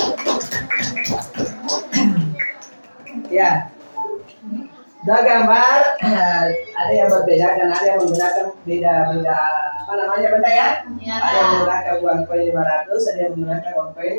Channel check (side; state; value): both; inverted; correlation -1.00